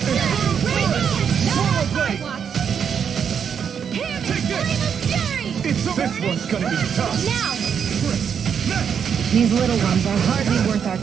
Take this! It's over. This one's gonna be tough. Now! These little ones are hardly worth our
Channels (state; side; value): quieter; left; 7.4 dB